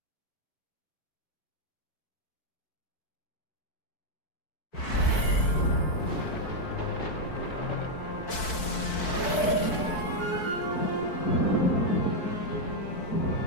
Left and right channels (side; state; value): right; late; 4.6 ms